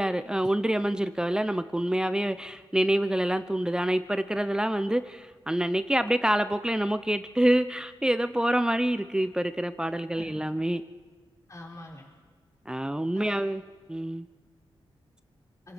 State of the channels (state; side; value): normal; both; correlation 0.96